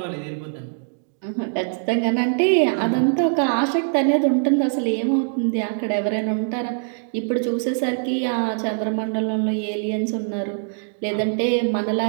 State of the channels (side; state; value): left; silent; digital silence